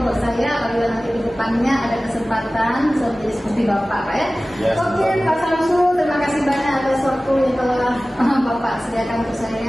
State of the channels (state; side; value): normal; both; correlation 0.97